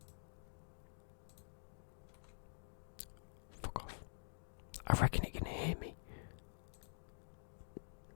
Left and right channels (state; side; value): silent; right; digital silence